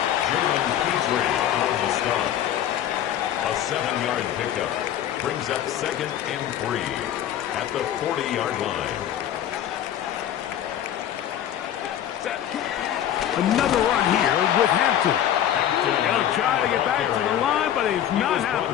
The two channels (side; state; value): right; quieter; 10.8 dB